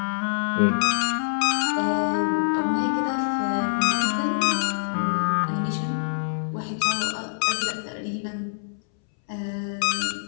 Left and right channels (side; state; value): right; silent; 62 dB below the other